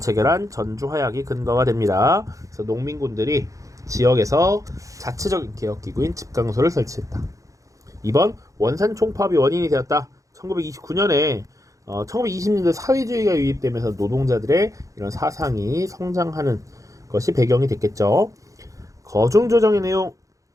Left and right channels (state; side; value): late; left; 0.16 ms